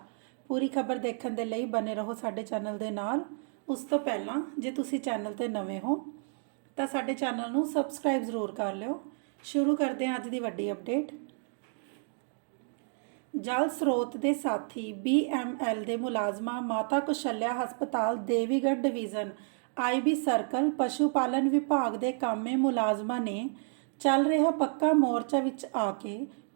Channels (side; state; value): left; silent; 57 dB below the other